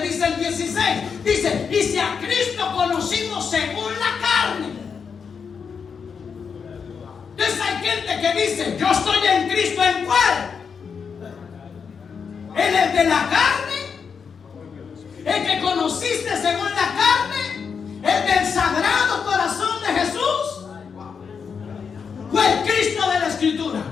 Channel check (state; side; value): quieter; right; 6.2 dB